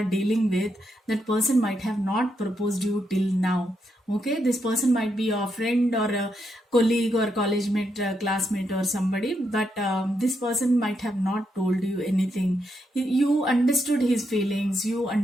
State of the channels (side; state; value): both; normal; correlation 0.81